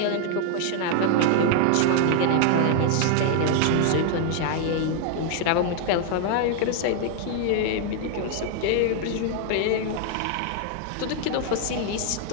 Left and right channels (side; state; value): both; different; correlation 0.00